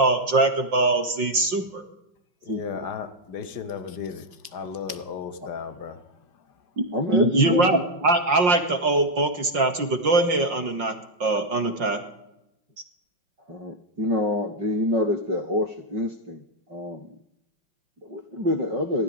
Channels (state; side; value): late; left; 5.6 ms